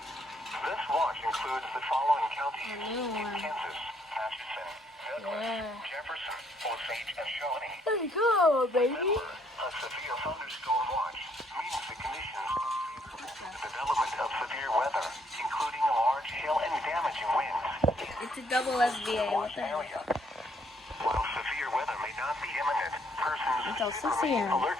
watch includes the following counties in Kansas: Atchison, Douglas, Jefferson, Osage, and Shawnee. Let's go, baby. Remember, a severe thunderstorm watch means the conditions favorable to the development of severe weather, including large hail and damaging winds. It's a double SBA. What the heck? While severe weather may not be imminent, persons Until 6 should remain a.m. alert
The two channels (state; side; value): normal; both; correlation 0.69